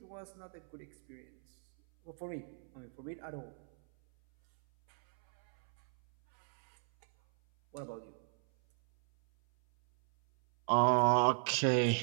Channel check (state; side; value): silent; left; 54 dB below the other